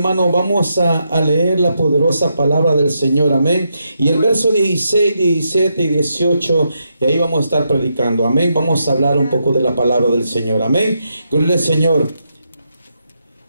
vamos a leer la poderosa palabra del Señor, amén. Y el verso 16, 17 y 18, y ahí vamos a estar predicando, amén. Vamos a hablar un poco de la palabra del Señor, amén. Gloria al Señor.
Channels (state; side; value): inverted; both; correlation -0.82